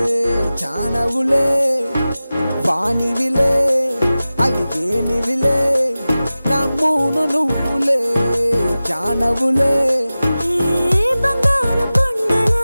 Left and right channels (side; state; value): both; inverted; correlation -0.96